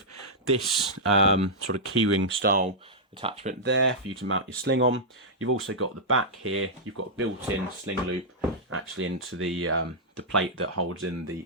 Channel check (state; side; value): normal; both; correlation -0.09